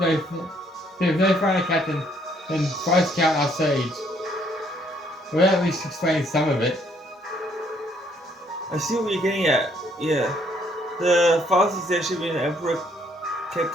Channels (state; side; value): normal; both; correlation 0.67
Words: finer captain than Vice Count our sage. We'll at least explain some of it. I see what you're getting at. Yeah. The fastest airship in the Emperor kept